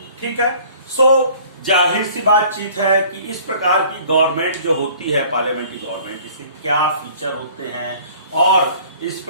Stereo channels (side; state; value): both; inverted; correlation -0.52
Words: ठीक है। सो जाहिर सी बातचीत है कि इस प्रकार की गवर्नमेंट जो होती है पार्लियामेंट्री गवर्नमेंट, इसके क्या फीचर होते हैं और इस